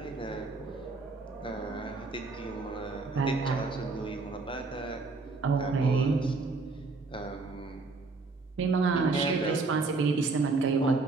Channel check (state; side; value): quieter; left; 3.8 dB